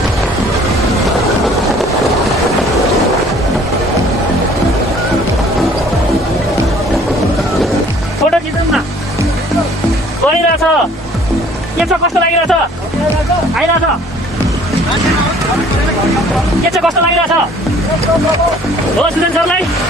फोटो खिचौँ न गइरहेछ के छ कस्तो लागिरहेछ आइरहेछ के छ कस्तो लागिरहेछ हो सुजन सरलाई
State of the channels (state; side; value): normal; both; correlation 0.55